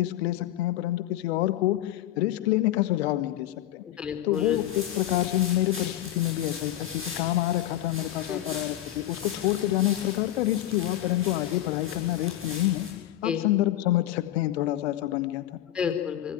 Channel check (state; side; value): quieter; right; 13.4 dB